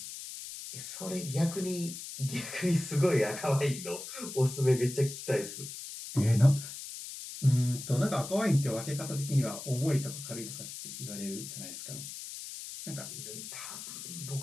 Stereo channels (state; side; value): noise; left; hiss, 10 dB below the sound